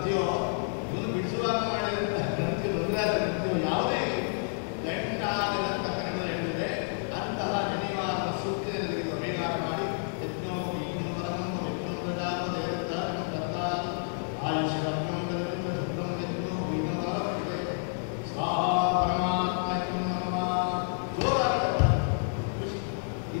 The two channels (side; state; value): right; silent; 58 dB below the other